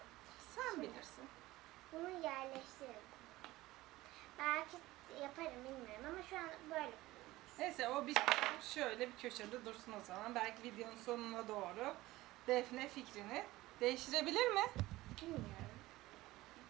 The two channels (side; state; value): left; quieter; 18.1 dB